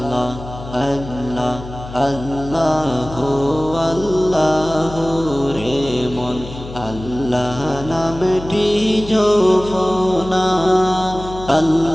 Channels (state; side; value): noise; left; hum, 13 dB below the sound